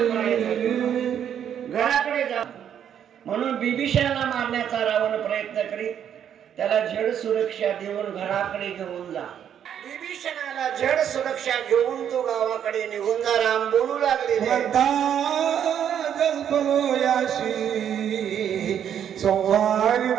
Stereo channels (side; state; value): left; quieter; 9.2 dB